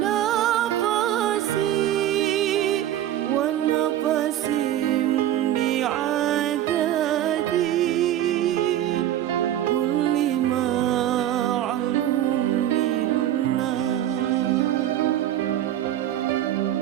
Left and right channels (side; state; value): left; quieter; 12.1 dB